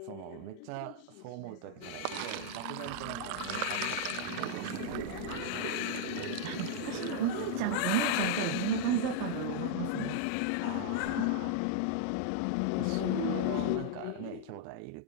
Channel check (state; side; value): different; both; correlation -0.01